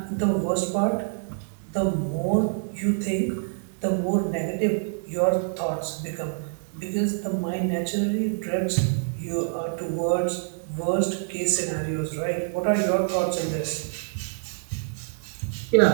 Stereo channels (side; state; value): left; silent; digital silence